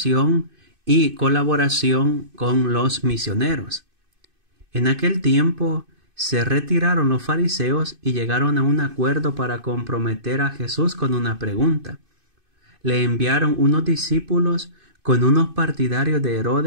y colaboración con los misioneros. En aquel tiempo se retiraron los fariseos y llegaron a un acuerdo para comprometer a Jesús con una pregunta. Le enviaron unos discípulos con unos partidarios de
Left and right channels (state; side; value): late; left; 2.6 ms